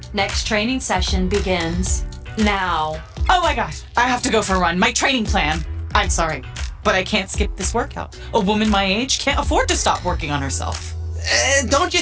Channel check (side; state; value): both; identical; correlation 1.00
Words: next training session begins now. Oh my gosh, I have to go for a run. My training plan. I'm sorry, but I can't skip this workout. A woman my age can't afford to stop working on herself. Don't you